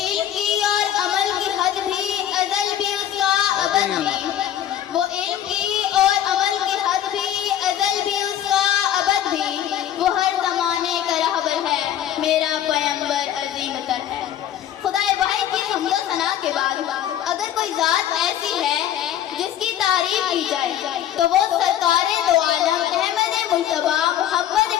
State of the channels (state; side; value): quieter; right; 11.0 dB